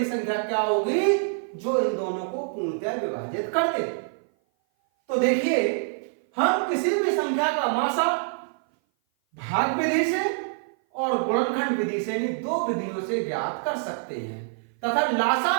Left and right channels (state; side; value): silent; left; 57 dB below the other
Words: संख्या क्या होगी जो इन दोनों को पूर्णतः विभाजित कर दे। तो देखिए, हम किसी भी संख्या का मासा भाग विधि से और गुणनखंड विधि से, यानी दो विधियों से ज्ञात कर सकते हैं, तथा